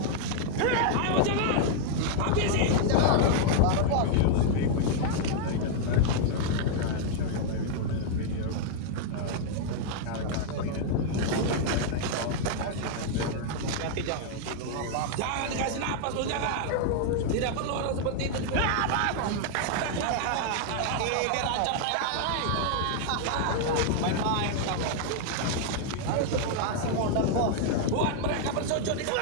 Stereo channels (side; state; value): both; different; correlation -0.01